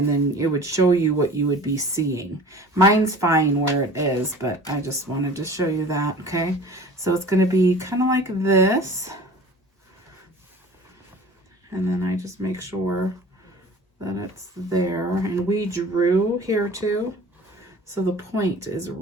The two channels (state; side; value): normal; both; correlation 0.43